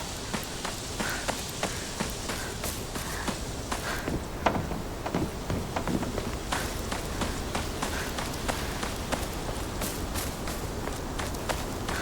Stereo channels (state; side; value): identical; both; correlation 1.00